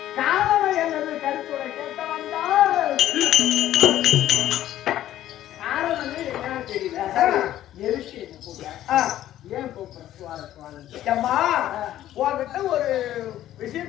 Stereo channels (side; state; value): right; quieter; 12.9 dB